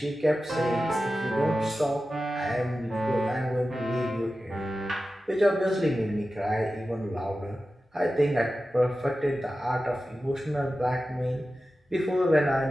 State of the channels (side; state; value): both; normal; correlation 0.94